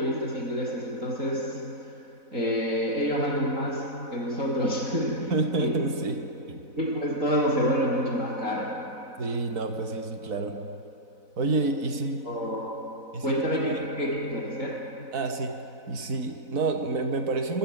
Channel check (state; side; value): late; left; 4.0 ms